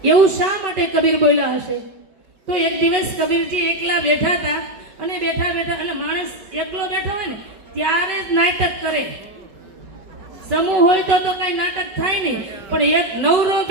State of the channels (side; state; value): left; late; 5.2 ms